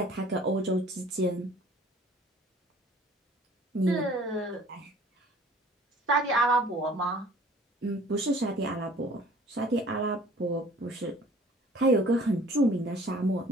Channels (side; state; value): both; normal; correlation 0.52